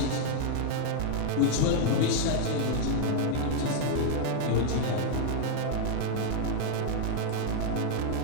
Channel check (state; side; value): different; both; correlation 0.00